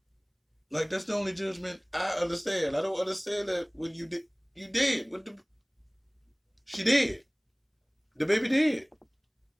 Like, that's the only judgment I understand. I don't understand that when you did. She did. The baby did.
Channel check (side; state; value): both; identical; correlation 1.00